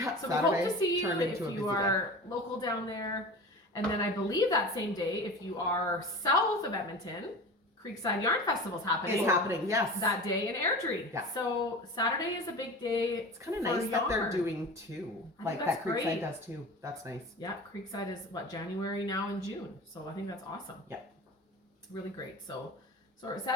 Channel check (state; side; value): normal; both; correlation 0.34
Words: So Saturday we hope to see you turned if into a you busy are local down there. And then I believe that same day, if you are south of Edmonton, Creekside Yarn Festival's happening. It's happening, yes. That day in Airdrie. Yeah. So Saturday is a big day. It's kind of nice that they're doing two. I Like think that that's Creekside great. does too. That's nice. Yeah, Creekside is January now and June. So I think that's awesome. Yeah. It's really great. So we're